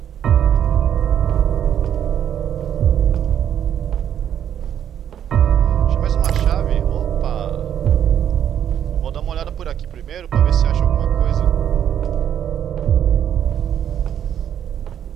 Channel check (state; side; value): quieter; left; 9.6 dB